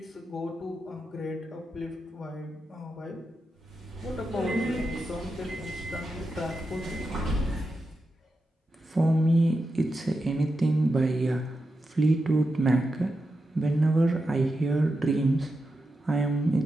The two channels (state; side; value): normal; both; correlation 0.89